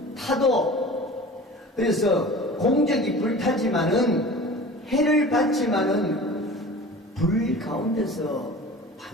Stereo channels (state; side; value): normal; both; correlation 0.39